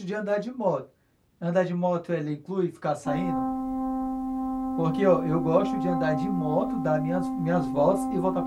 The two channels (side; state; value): both; identical; correlation 1.00